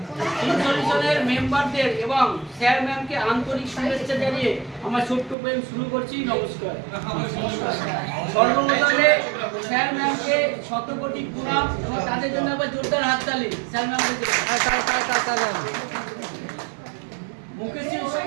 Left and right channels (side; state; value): left; drops out; at 5.4 s